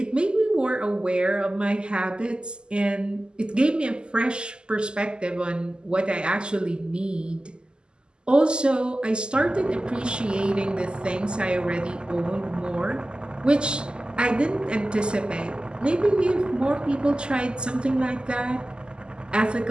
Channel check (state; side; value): late; left; 0.048 ms